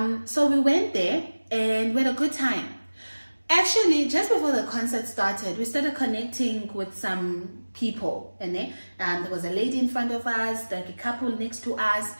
So we went there and we had a good time. Actually, just before the concert started, we started connecting with some people. And then there was a lady in front of us, like a couple next to us.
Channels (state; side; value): inverted; both; correlation -1.00